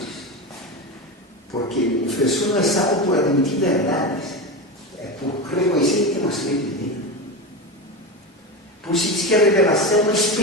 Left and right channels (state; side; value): normal; both; correlation 0.19